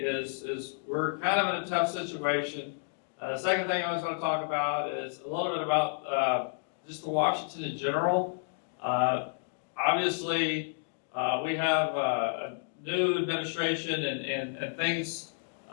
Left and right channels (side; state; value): right; silent; digital silence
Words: we're kind of in a tough situation. The second thing I was going to talk about is a little bit about just the Washington in general. Obviously, we have a new administration and things